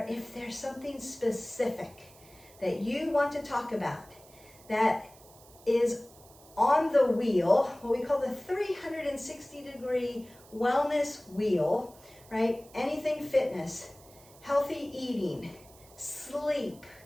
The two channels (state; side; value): noise; right; hiss, 24 dB below the sound